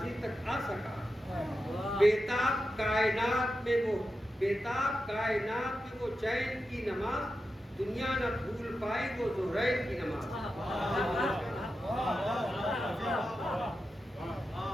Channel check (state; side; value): normal; both; correlation 0.90